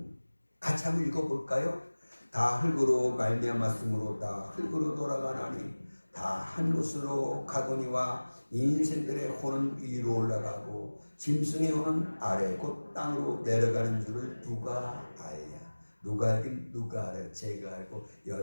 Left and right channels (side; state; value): both; inverted; correlation -1.00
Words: 같이 한번 읽어볼까요? 다 흙으로 말미암았으므로 다 흙으로 돌아가나니 다 한 곳으로 가거니와 인생들의 혼은 위로 올라가고 짐승의 혼은 아래 곧 땅으로 내려가는 줄을 누가 알냐? 누가 알긴 누가 알아요? 제가 알고